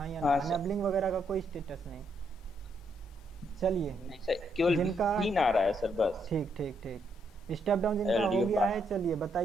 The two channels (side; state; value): both; normal; correlation 0.76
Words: या हाँ ना। सर। एनेबलिंग वगैरह का कोई स्टेटस नहीं। चलिए, नहीं सर, केवल जिनका- भी ना रहा है सर बस। ठीक ठीक ठीक। स्टेप डाउन जिनका हो LDO गया है, चलिए